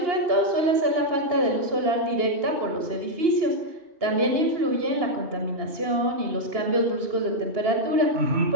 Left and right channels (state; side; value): late; left; 2.8 ms